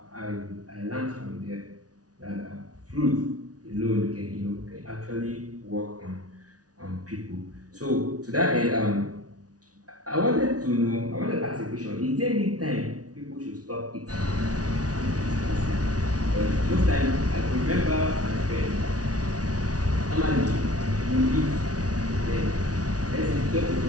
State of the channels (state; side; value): late; left; 0.68 ms